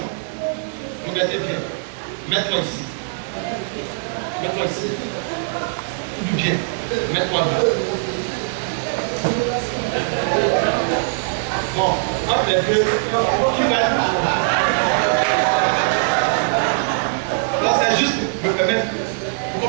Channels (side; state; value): left; silent; 65 dB below the other